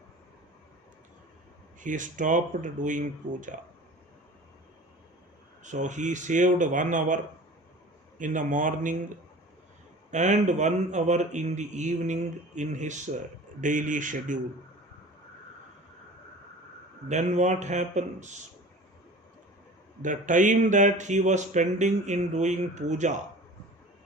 He stopped doing puja. So he saved 1 hour in the morning and 1 hour in the evening in his daily schedule. Then what happens? The time that he was spending in doing puja,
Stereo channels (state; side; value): normal; both; correlation 0.40